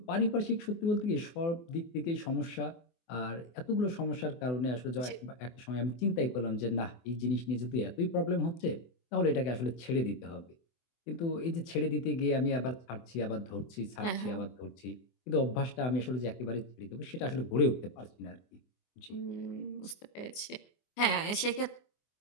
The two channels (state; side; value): late; right; 24 ms